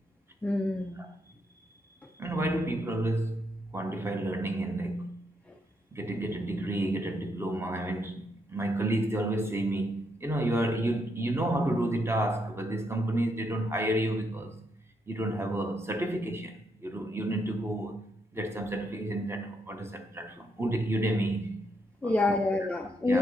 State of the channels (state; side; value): normal; both; correlation 0.78